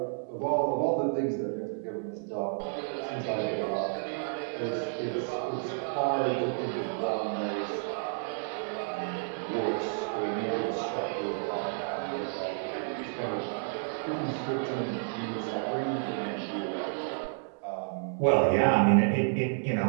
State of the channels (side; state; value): left; silent; 57 dB below the other